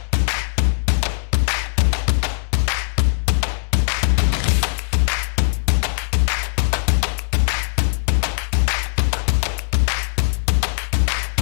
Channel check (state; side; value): silent; right; digital silence